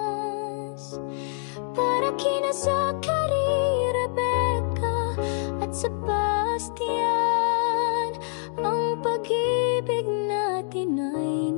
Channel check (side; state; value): right; silent; digital silence